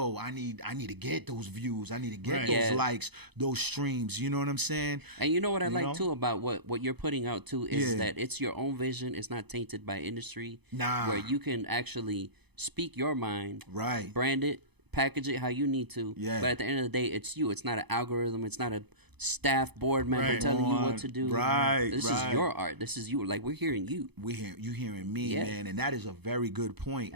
I need to get those views. I need to get Right. those Yeah. likes, those streams. You know what I'm saying? And you know what I You like know? too about what you're putting out too is Yeah. that it's your own vision. It's not tainted by industry. Nah. Where you can actually speak your mind, Right. brand it, package it how you need to. Yeah. But at the end of the day, it's you. It's not an algorithm. It's not a staff board member Right. telling you On. what to do. Right, This right. is your art. This is you. Like, we're hearing you. You hearing me, Yeah. man, and that is a very good point.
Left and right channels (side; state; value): left; late; 0.99 ms